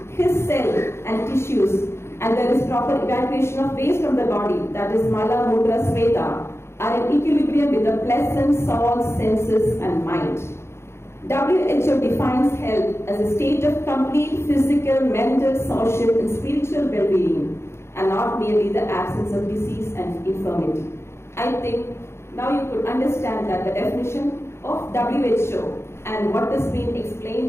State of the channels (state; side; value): late; right; 0.12 ms